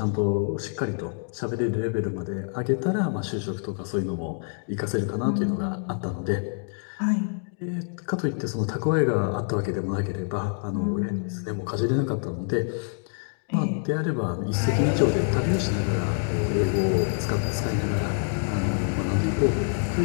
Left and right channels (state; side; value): silent; right; 61 dB below the other